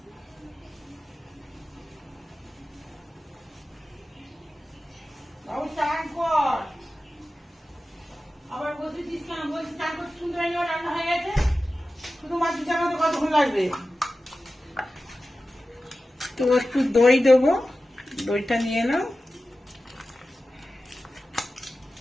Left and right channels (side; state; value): both; normal; correlation 0.94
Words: বাবু চান কর, আবার বসেছিস কেন? বলছি চান করতে শুনতে পাইনি, রান্না হয়ে গেছে। শুধু মাছ চানাতে কতক্ষণ লাগবে? তো একটু দই দেবো, দইটা নিয়ে নাও।